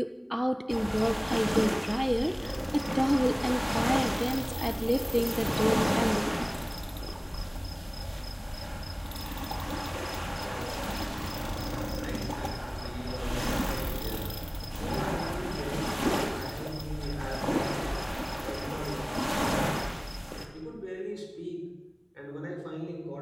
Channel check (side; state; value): both; identical; correlation 1.00